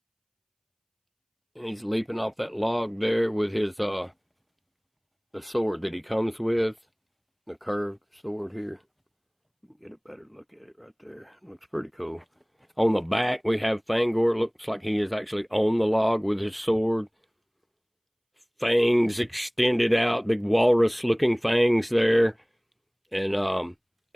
And he's leaping off that log there with his the sword that he comes with, the curved sword here. Get a better look at it right there. Looks pretty cool. On the back, we have Fang-Or. Looks like he is actually on the log with his sword. Fangs extended out, big walrus-looking fangs there. And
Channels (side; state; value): both; identical; correlation 1.00